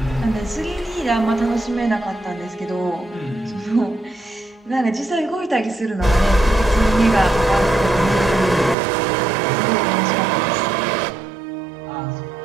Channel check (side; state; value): left; drops out; at 8.8 s